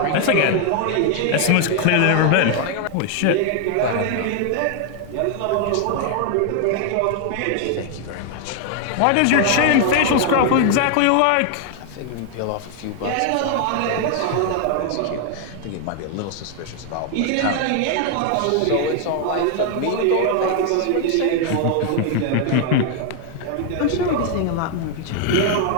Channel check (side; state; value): both; different; correlation 0.00